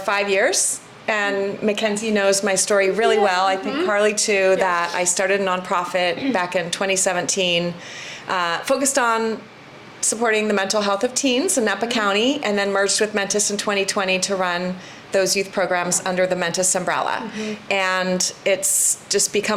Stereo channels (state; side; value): identical; both; correlation 1.00